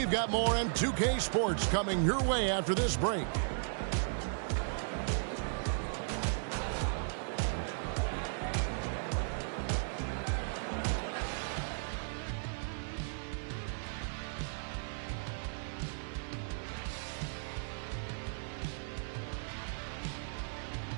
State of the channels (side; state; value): left; silent; 54 dB below the other